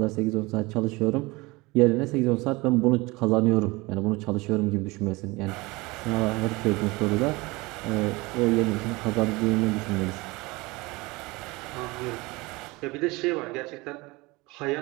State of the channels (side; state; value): left; quieter; 23.3 dB